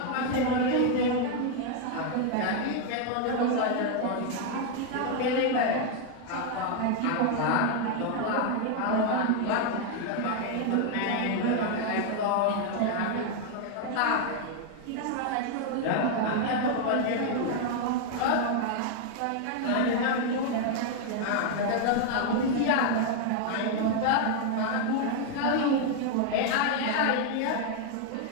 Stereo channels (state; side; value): different; both; correlation 0.00